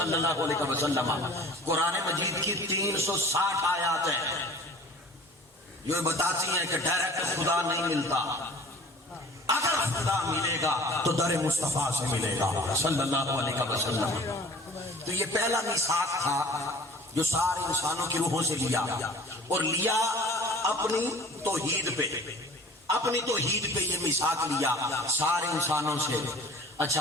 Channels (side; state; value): both; normal; correlation 0.46